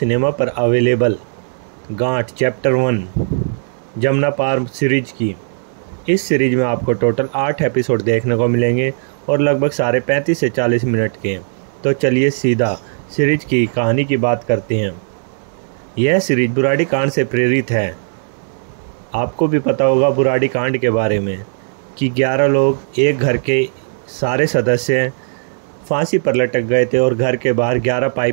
पर अवेलेबल गांठ चैप्टर 1 जमुना पार सीरीज की। इस सीरीज में आपको टोटल 8 एपिसोड देखने को मिलेंगे और लगभग साढ़े 35 से 40 मिनट के। तो चलिए सीधा सीरीज की कहानी की बात करते हैं। यह सीरीज बुराड़ी कांड से प्रेरित है। आपको भी पता होगा बुराड़ी कांड के बारे में कि 11 लोग, एक घर के सारे सदस्य फांसी पर लटक गए थे और घर के बाहर 11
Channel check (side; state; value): left; silent; 68 dB below the other